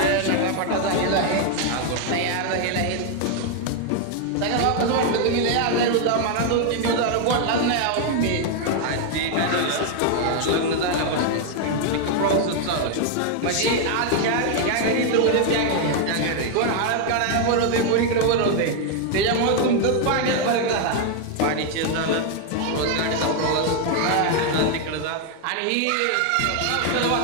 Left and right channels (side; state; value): both; different; correlation 0.01